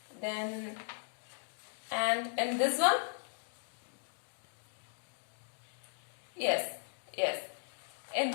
Then, and in this one? Yes. In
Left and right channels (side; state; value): right; silent; digital silence